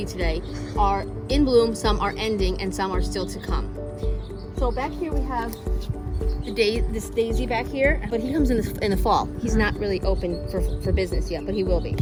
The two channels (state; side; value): identical; both; correlation 1.00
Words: today are in bloom, some are ending, and some are still to come. So back here we have this daisy back here, but he comes in the fall. He's not really open for business yet, but he will be.